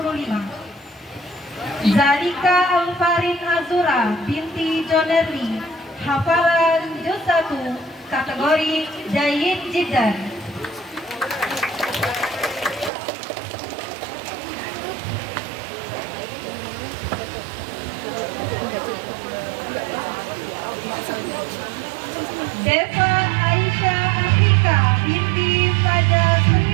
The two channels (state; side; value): drops out; left; at 12.9 s